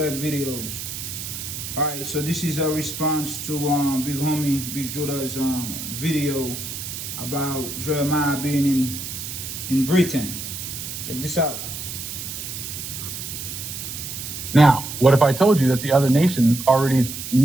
videos. All right, so this is a response to Big Homie, Big Judah's video about Jeremiah being in Britain. Check this out. Now, what if I told you that the other nations already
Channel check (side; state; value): right; noise; hiss, 7 dB below the sound